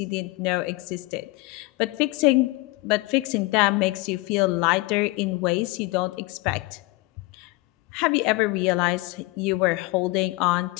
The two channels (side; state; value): right; quieter; 22.3 dB